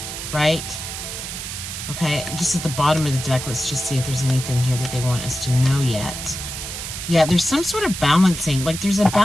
right? Okay, just at the bottom of the deck, let's just see if there's anything here that they want us to know yet. Yeah, there's some sort of balancing. Like there's a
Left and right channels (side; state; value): right; noise; hiss, 7 dB below the sound